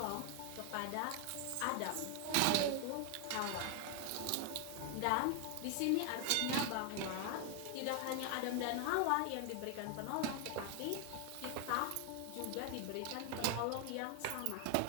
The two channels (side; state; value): both; different; correlation 0.01